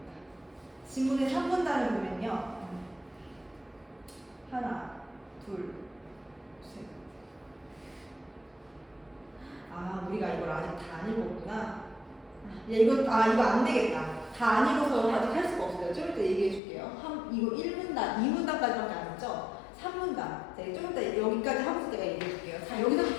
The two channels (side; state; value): right; drops out; at 16.6 s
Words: 지문의 3문단을 보면요. 하나, 둘, 셋. 아, 우리가 이걸 아직 다 안 읽었구나. 이거 안 되겠다. 다 안 읽어서 아직 할 수가 없어요. 좀 이따 얘기해 줄게요. 이거 1문단, 2문단까지밖에 안 했죠? 3문단. 네, 좀 이따 여기까지 하면서 내가 얘기해 줄게요. 자,